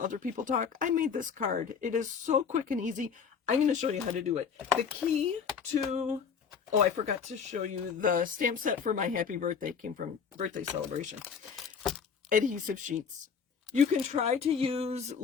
other people talk, I made this card. It is so quick and easy. I'm going to show you how to do it. The key to, oh, I forgot to show you the stamp set for my happy birthday. Came from birthday celebration. Adhesive sheets. You can try to use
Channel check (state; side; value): quieter; right; 6.5 dB